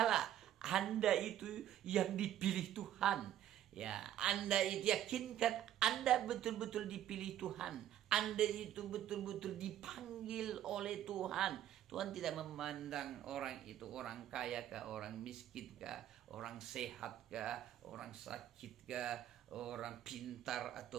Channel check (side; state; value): left; quieter; 11.7 dB